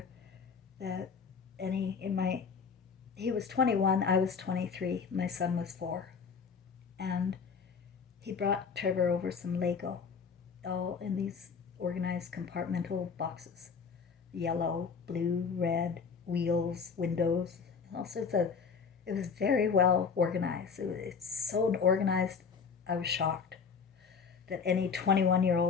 that he was 21, I was 23, my son was 4. And he brought Trevor over some Lego, all in these organized compartmental boxes. Yellow, blue, red, wheels, windows, all sorts of. It was very well organized. It's so organized, I was shocked that any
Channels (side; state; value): right; quieter; 5.8 dB